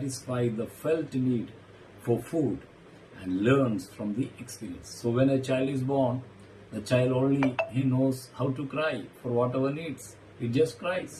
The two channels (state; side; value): identical; both; correlation 1.00